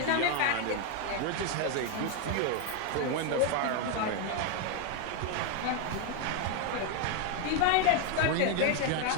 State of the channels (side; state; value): both; different; correlation 0.01